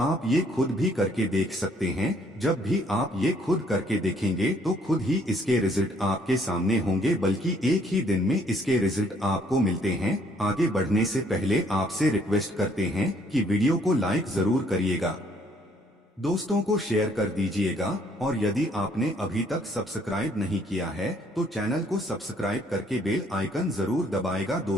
ये खुद भी करके देख सकते हैं। जब भी आप ये खुद करके देखेंगे तो खुद ही इसके रिजल्ट आपके सामने होंगे, बल्कि एक ही दिन में इसके रिजल्ट आपको मिलते हैं। आगे बढ़ने से पहले आपसे रिक्वेस्ट करते हैं कि वीडियो को लाइक जरूर करिएगा, दोस्तों को शेयर कर दीजिएगा और यदि आपने अभी तक सब्सक्राइब नहीं किया है तो चैनल को सब्सक्राइब करके बेल आइकन जरूर दबाएगा।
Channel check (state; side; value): normal; both; correlation 0.64